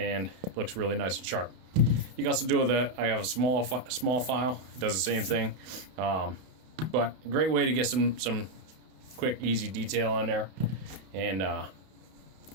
looks really nice and sharp. You can also do with I have a small file. It does the same thing. But a great way to get some quick, easy detail in there. And oh,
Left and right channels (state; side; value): late; left; 31 ms